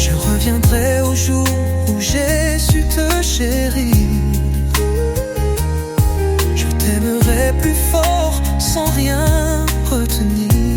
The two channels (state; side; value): identical; both; correlation 1.00